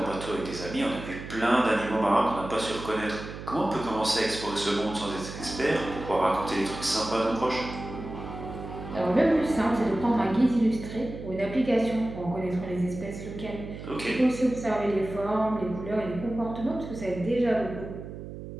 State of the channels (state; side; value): noise; right; hum, 10 dB below the sound